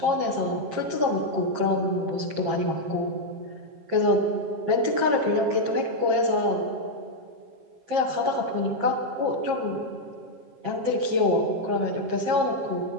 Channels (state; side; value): late; left; 6.7 ms